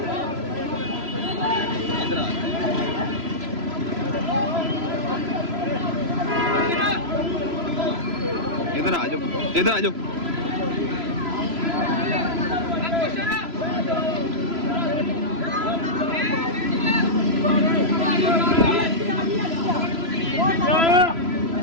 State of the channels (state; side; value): late; left; 3.0 ms